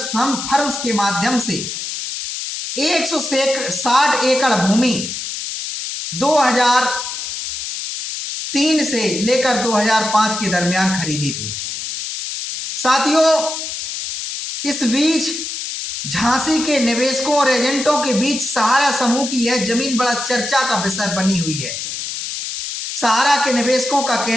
के माध्यम से 160 एकड़ भूमि 2003 से लेकर 2005 के दरमियान खरीदी थी। साथियों इस बीच झांसी के निवेशकों और एजेंटों के बीच सहारा समूह की यह जमीन बड़ा चर्चा का विषय बनी हुई है। सहारा के निवेशकों का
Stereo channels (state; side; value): noise; left; hiss, 6 dB below the sound